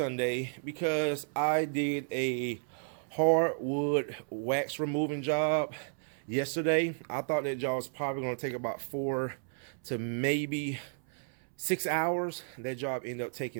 because I did a hardwood wax removing job yesterday. I thought that job was probably going to take about 4 to maybe 6 hours. That job ended up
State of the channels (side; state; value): left; silent; 56 dB below the other